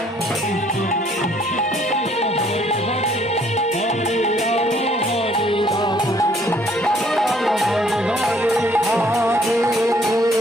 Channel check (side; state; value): both; normal; correlation 0.62